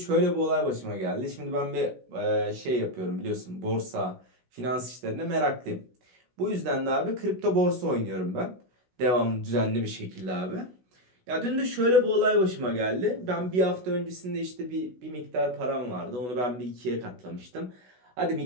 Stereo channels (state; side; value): late; left; 16 ms